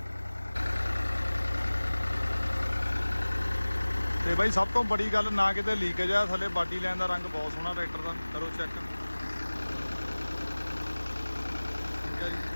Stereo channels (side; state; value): both; inverted; correlation -1.00